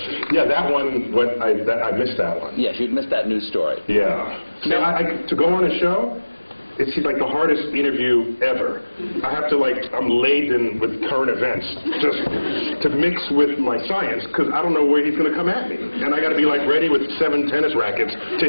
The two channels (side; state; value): both; inverted; correlation -1.00